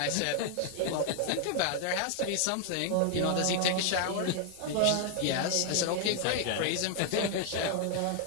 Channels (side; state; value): both; different; correlation 0.00